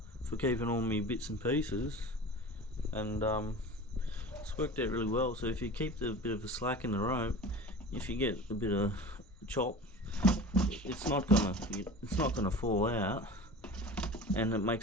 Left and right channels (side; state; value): both; normal; correlation 0.36